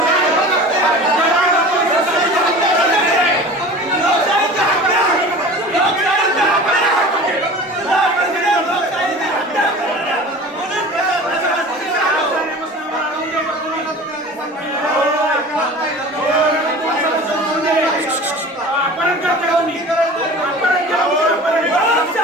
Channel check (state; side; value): normal; both; correlation 0.38